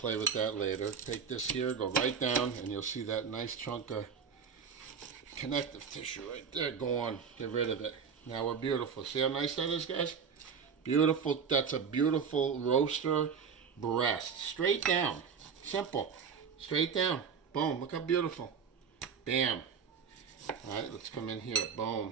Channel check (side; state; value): left; quieter; 6.4 dB